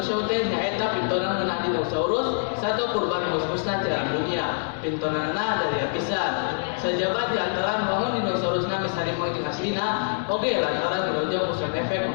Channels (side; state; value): right; silent; digital silence